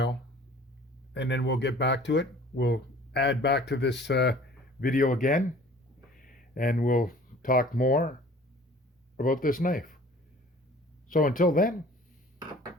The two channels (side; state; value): both; normal; correlation 0.49